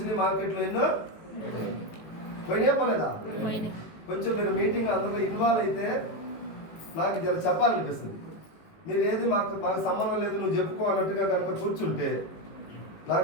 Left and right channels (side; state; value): right; late; 18 ms